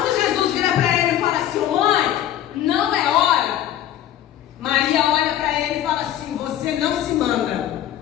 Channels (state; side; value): quieter; right; 11.7 dB